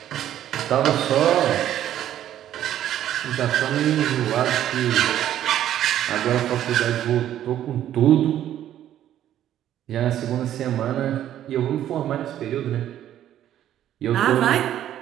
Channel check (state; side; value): quieter; left; 11.6 dB